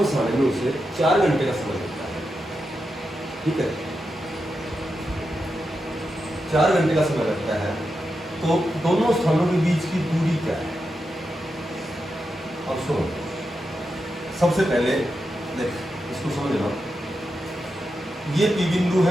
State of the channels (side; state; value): both; normal; correlation 0.88